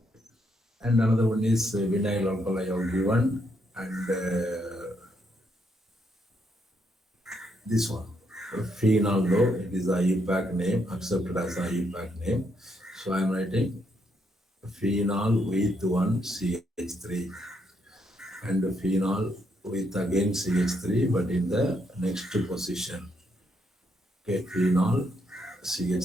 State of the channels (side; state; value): both; normal; correlation 0.76